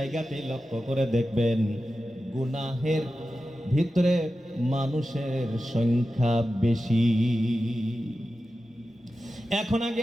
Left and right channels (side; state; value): both; normal; correlation 0.93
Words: লক্ষ্য করে দেখবেন গুনাহের ভিতরে মানুষের সংখ্যা বেশি। এখন